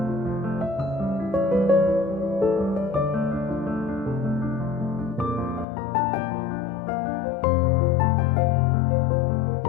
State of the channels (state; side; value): drops out; right; at 5.7 s